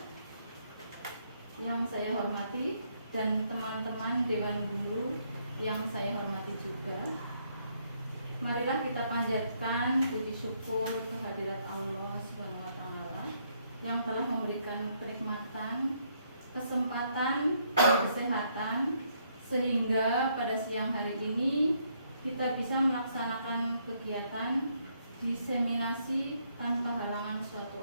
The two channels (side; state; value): both; inverted; correlation -0.72